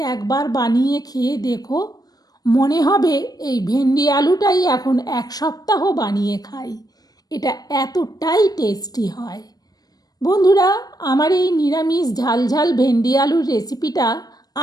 একবার বানিয়ে খেয়ে দেখো। মনে হবে এই ভেন্ডি আলুটাই এখন 1 সপ্তাহ বানিয়ে খাই। এটা এতটাই টেস্টি হয়। বন্ধুরা, আমার এই নিরামিষ ঝাল ঝাল ভেন্ডি আলুর রেসিপিটা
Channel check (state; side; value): late; right; 0.19 ms